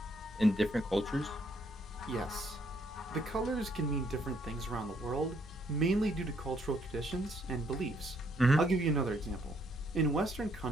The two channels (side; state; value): both; normal; correlation 0.69